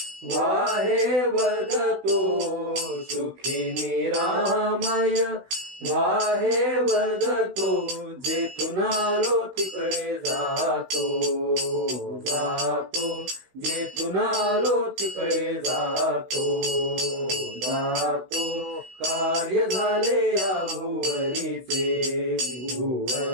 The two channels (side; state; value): left; late; 16 ms